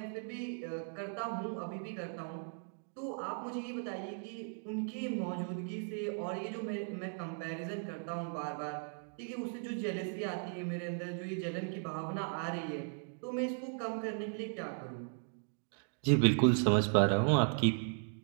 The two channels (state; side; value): silent; left; 53 dB below the other